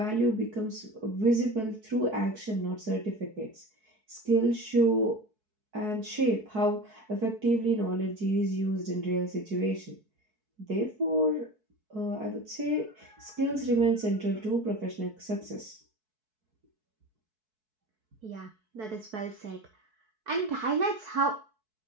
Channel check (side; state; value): left; late; 4.6 ms